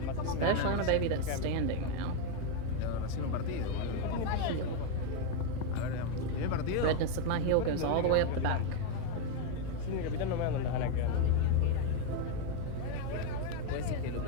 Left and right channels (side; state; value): both; different; correlation 0.01